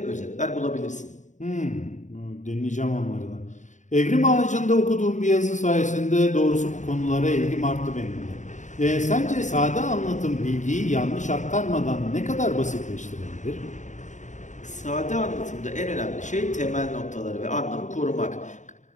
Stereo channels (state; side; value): late; right; 0.35 ms